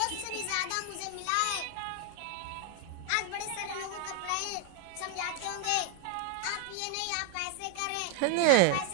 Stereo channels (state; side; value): different; both; correlation 0.01